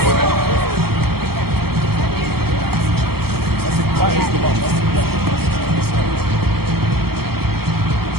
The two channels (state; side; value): late; left; 0.95 ms